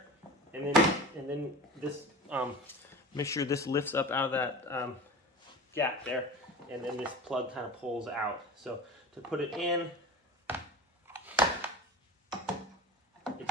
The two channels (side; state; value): both; normal; correlation 0.33